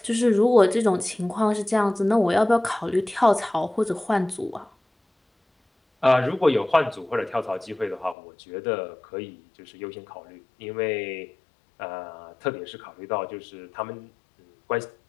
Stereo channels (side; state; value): right; drops out; at 8.2 s